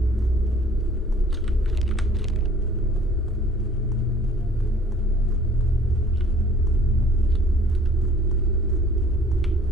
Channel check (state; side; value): normal; both; correlation 0.52